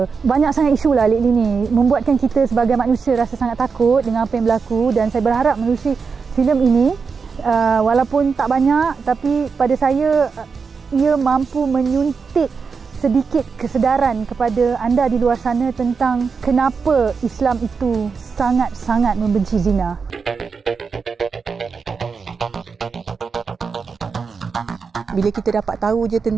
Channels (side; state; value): left; quieter; 5.3 dB